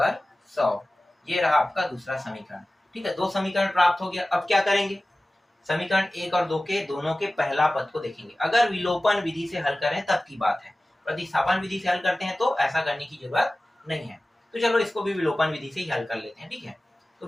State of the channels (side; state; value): both; normal; correlation 0.97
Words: 100, ये रहा आपका दूसरा समीकरण, ठीक है। 2 समीकरण प्राप्त हो गया। अब क्या करेंगे, समीकरण 1 और 2 के दोनों के पहला पद को देखेंगे। अगर विलोपन विधि से हल करें तब की बात है, प्रतिस्थापन विधि से हल करते हैं तो ऐसा करने की जरूरत नहीं है। तो चलो इसको भी विलोपन विधि से ही हल कर लेते हैं, ठीक है। तो